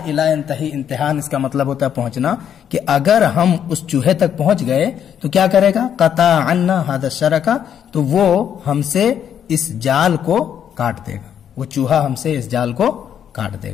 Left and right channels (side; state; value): right; quieter; 9.0 dB